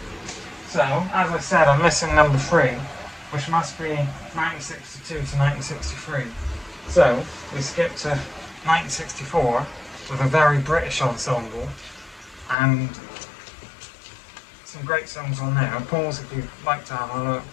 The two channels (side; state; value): right; drops out; at 12.6 s